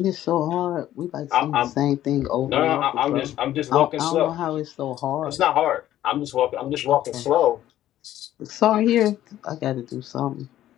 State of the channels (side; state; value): right; quieter; 12.9 dB